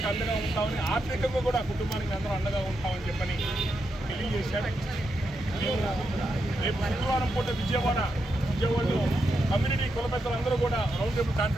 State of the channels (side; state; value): both; normal; correlation 0.84